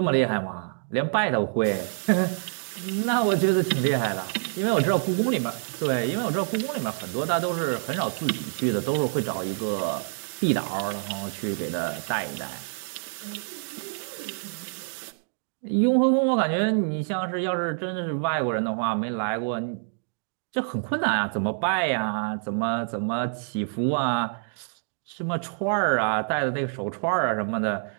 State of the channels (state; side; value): silent; left; digital silence